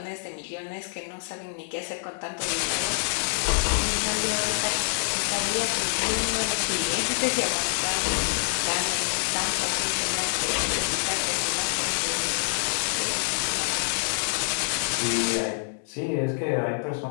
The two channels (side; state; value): right; silent; digital silence